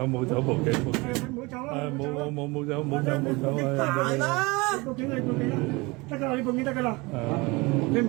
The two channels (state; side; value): quieter; left; 24.9 dB